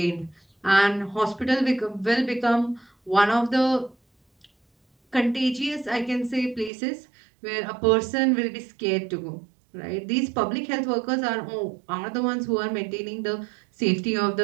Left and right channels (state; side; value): drops out; left; at 6.7 s